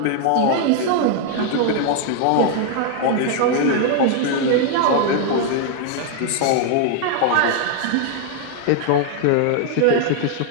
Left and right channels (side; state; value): both; different; correlation 0.00